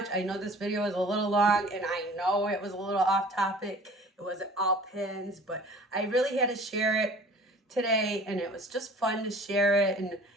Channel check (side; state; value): both; normal; correlation 0.47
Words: I know this video is a little long and I know it was a little off topic. It wasn't all pins, but I really had to share it today, and it was just fun to share it. And